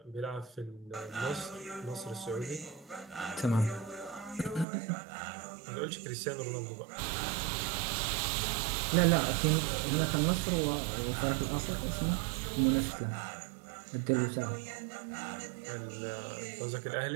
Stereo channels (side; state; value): left; drops out; at 4.7 s